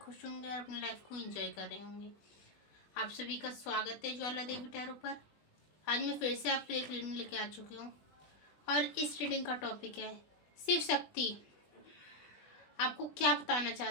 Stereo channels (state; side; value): late; right; 20 ms